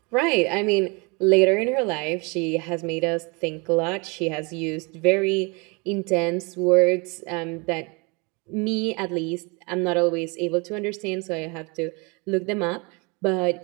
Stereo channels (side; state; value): left; quieter; 29.6 dB